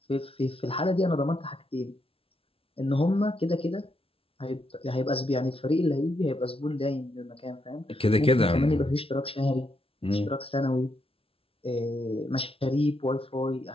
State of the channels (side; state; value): right; late; 0.27 ms